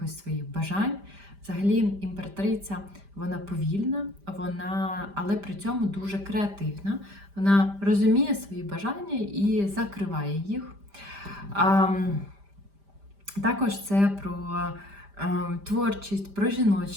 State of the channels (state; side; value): late; left; 5.0 ms